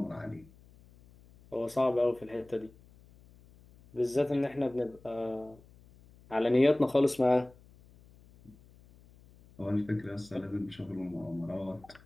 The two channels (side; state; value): left; noise; hum, 25 dB below the sound